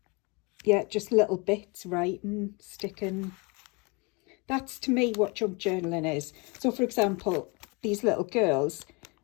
yeah, just little bits, writing, sticking. That's to me what junk journaling is. So for example, these little girls,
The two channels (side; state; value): right; quieter; 29.3 dB